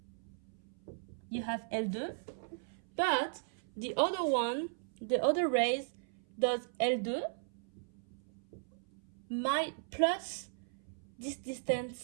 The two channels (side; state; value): left; silent; 53 dB below the other